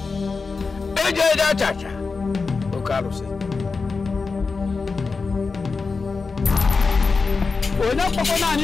Cha. Okarusi. Ona papa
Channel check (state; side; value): quieter; right; 4.5 dB